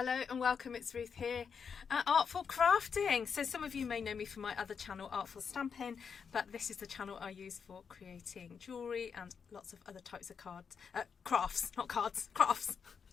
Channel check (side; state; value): right; quieter; 6.4 dB